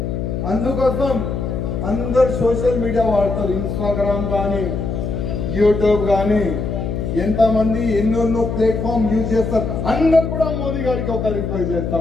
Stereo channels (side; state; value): left; noise; hum, 3 dB below the sound